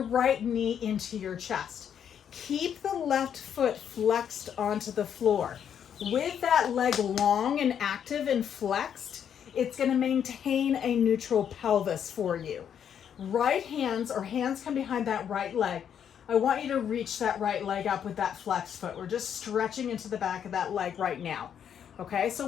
right knee into your chest. Keep the left foot flexed onto the floor. With that leg long and active and flexed, it's going to maintain a neutral pelvis for you. Right hands or hands come behind that right leg. I want you to reach that right leg up with that flexed foot. We're just stretching into the back of that leg right now. Okay,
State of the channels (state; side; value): quieter; right; 8.6 dB